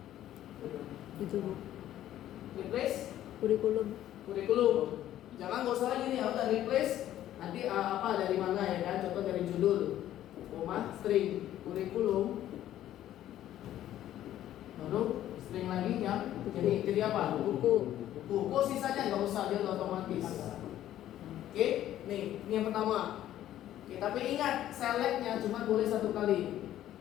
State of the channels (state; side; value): quieter; right; 12.5 dB